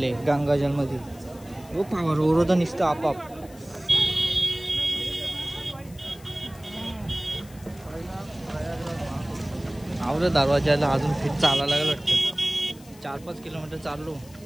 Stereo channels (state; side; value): noise; left; hiss, 23 dB below the sound